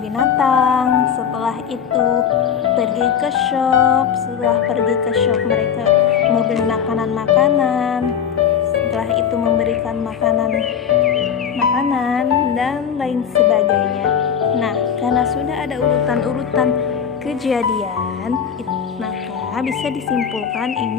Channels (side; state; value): right; quieter; 7.9 dB